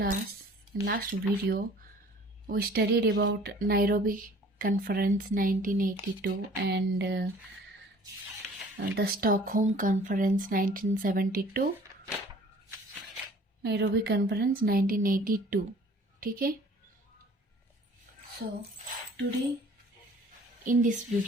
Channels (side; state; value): both; normal; correlation 0.51